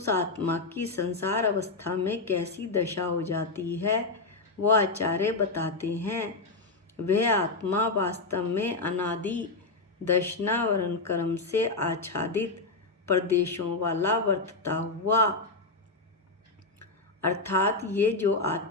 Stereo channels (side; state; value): right; quieter; 3.5 dB